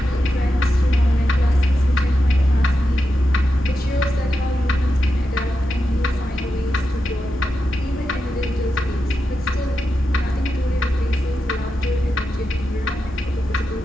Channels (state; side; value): normal; both; correlation 0.88